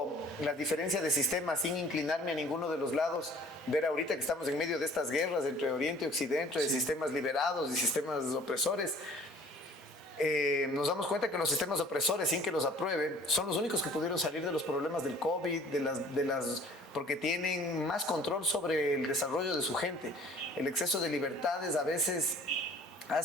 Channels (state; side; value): normal; both; correlation 0.51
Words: la diferencia de sistemas sin inclinarme a ninguno de los lados. Ver ahorita que estamos en medio de estas guerras entre Oriente y Occidente, de sistemas liberados y sistemas opresores. Nos damos cuenta que los sistemas opresores, sin que los aprueben, son los únicos que pudieron salir de los problemas del COVID, porque tienen más control sobre el desarrollo de su gente. El exceso de libertades a veces